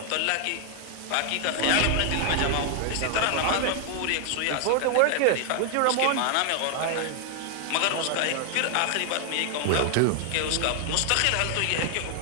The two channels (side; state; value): both; different; correlation 0.00